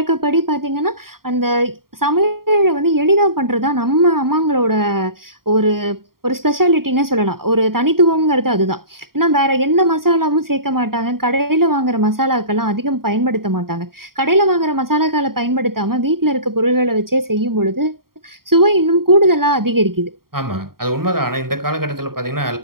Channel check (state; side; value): late; left; 0.93 ms